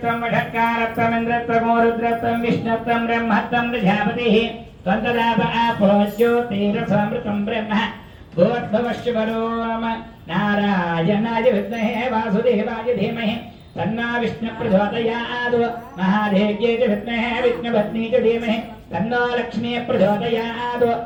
వషట్కారత్వం ఇంద్రత్వం రుద్రత్వం విష్ణుత్వం బ్రహ్మత్వం ప్రజాపతిః త్వంతదాప ఆపో జ్యోతిరసమృతం బ్రహ్మ భూర్భువఃశుభరోమ నారాయణాయ విద్మహే వాసుదేవాయ ధీమహి తన్నా విష్ణు ప్రచోదయాత్ మహాదేవ్యై చ విద్మహే విష్ణుపత్నీ చ ధీమహి తన్నో లక్ష్మీ ప్రచోదయాత్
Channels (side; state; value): both; identical; correlation 1.00